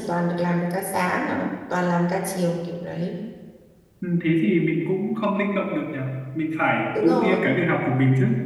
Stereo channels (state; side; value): identical; both; correlation 1.00